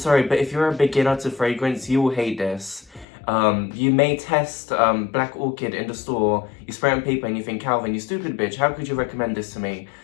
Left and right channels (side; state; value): right; drops out; at 3.1 s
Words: but if you're a beginner to fragrance, you will hate this. You may test Black Orchid in the store, you spray it on paper and you think, Calvin, you stupid bitch, how could you recommend this to me?